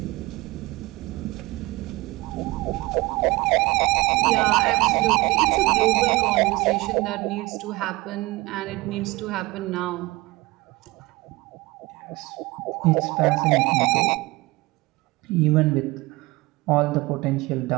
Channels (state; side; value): quieter; left; 21.6 dB